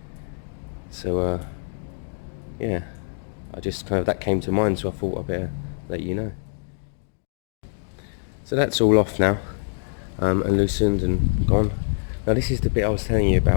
So yeah, I just kind of, that came to mind, so I thought I'd better let you know. So that's all off now, and loosened and gone. Now this is the bit I was telling you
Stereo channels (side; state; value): right; silent; digital silence